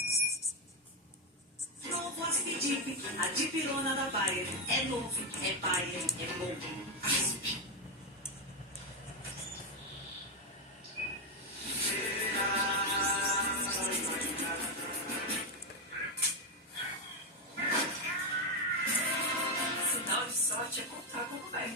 Novo Aspidip, a dipirona da Bayer. É novo, é Bayer, é bom. Asp. Sinal de sorte é contar como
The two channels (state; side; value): normal; both; correlation 0.08